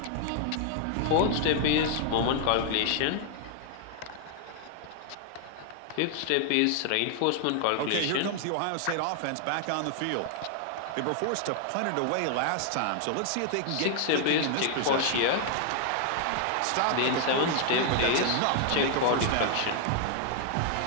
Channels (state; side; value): different; both; correlation 0.00